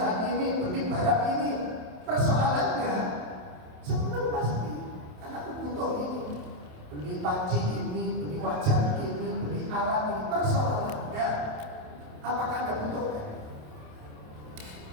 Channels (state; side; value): late; left; 27 ms